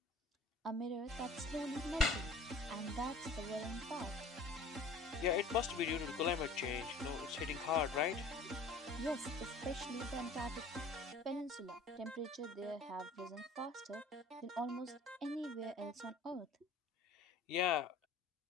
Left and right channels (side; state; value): right; quieter; 3.1 dB